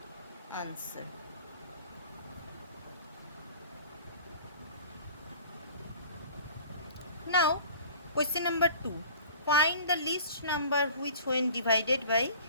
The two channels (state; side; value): inverted; both; correlation -0.45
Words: answer. Now question number 2. Find the least number which when divided by